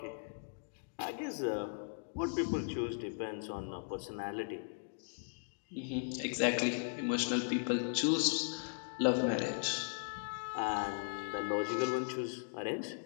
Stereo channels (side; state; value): right; silent; digital silence